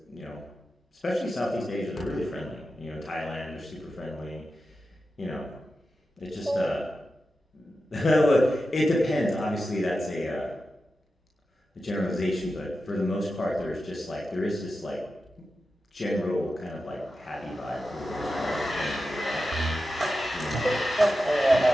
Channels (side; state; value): both; normal; correlation 0.92